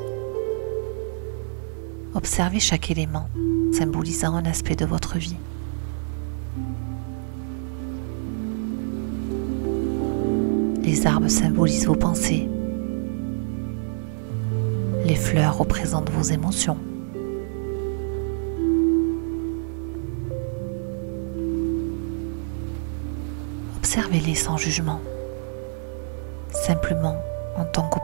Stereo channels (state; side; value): silent; left; digital silence